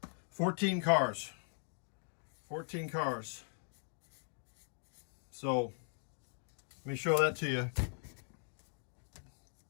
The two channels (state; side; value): silent; right; 51 dB below the other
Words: 8, 14 cars. 14 cars. So let me show that to you.